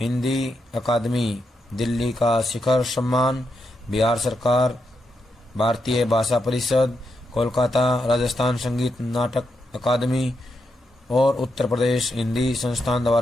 हिंदी अकादमी दिल्ली का शिखर सम्मान, बिहार सरकार, भारतीय भाषा परिषद, कोलकाता राजस्थान संगीत नाटक अकादमी और उत्तर प्रदेश हिंदी संस्थान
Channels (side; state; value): both; normal; correlation 0.83